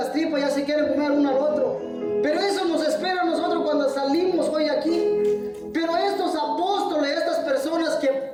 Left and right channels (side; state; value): both; identical; correlation 1.00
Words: tripas, ya se quieren comer uno al otro. Pero eso nos espera a nosotros cuando salimos hoy aquí. Pero estos apóstoles, estas personas que